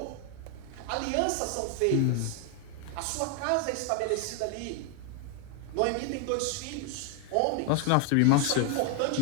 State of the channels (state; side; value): different; both; correlation 0.00